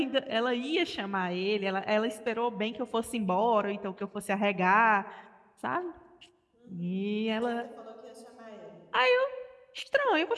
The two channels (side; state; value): both; identical; correlation 1.00